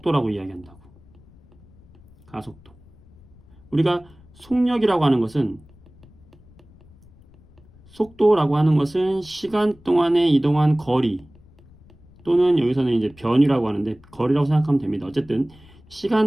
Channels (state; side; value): noise; left; rumble, 26 dB below the sound